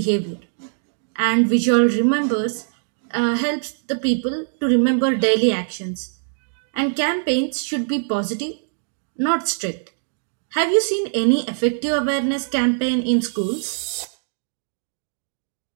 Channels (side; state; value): left; silent; digital silence